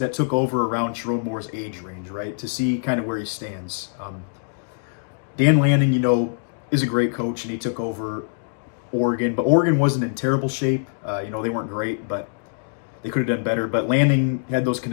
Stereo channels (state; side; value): silent; right; digital silence